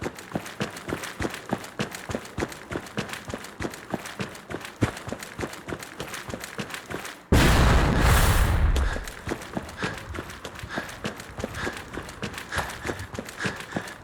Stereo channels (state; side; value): identical; both; correlation 1.00